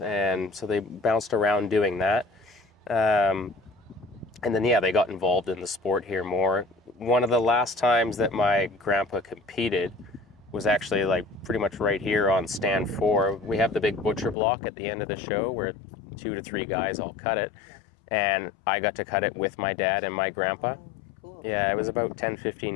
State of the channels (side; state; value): right; drops out; at 14.4 s